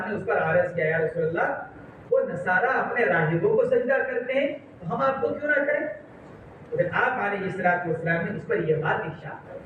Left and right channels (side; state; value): both; identical; correlation 1.00